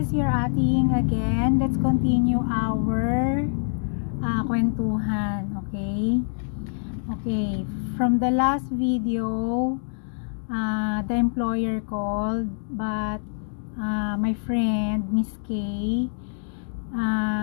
your ating again. Let's continue our kwentuhan, okay? Okay, from the last video, the employer called, but my friend, Miss K,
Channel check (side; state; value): right; silent; digital silence